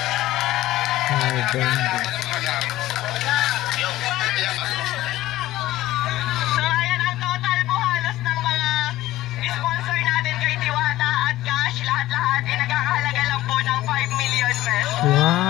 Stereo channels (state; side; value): quieter; right; 15.8 dB